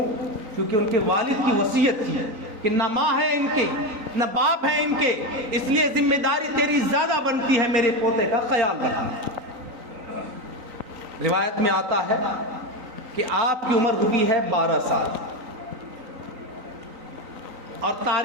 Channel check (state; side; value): late; left; 3.9 ms